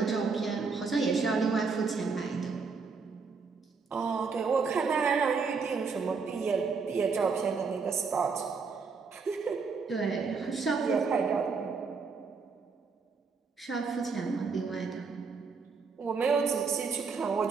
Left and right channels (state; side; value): quieter; left; 5.0 dB